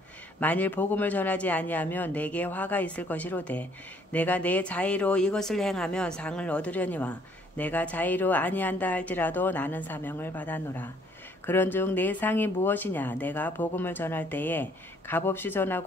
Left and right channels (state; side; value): normal; both; correlation 0.63